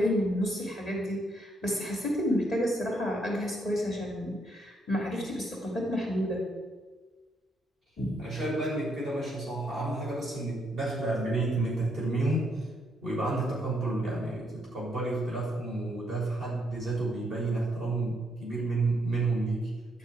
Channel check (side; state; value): both; normal; correlation 0.74